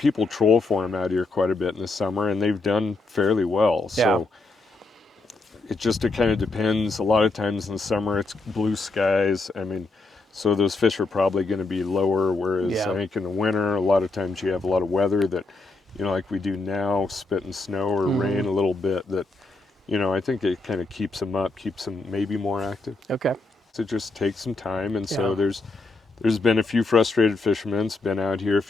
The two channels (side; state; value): right; quieter; 3.3 dB